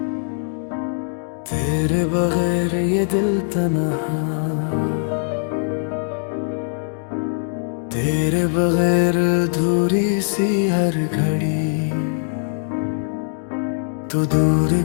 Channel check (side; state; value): right; silent; digital silence